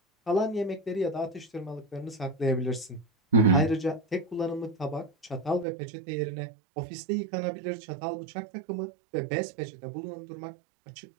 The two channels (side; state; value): left; drops out; at 5.7 s